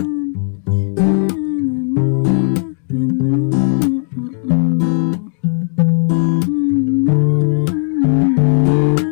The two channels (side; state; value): right; silent; 57 dB below the other